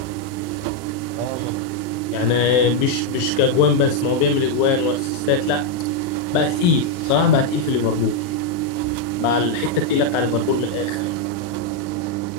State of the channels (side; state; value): right; late; 40 ms